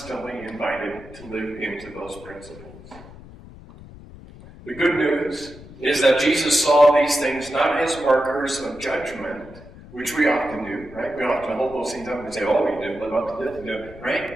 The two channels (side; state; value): left; noise; rumble, 18 dB below the sound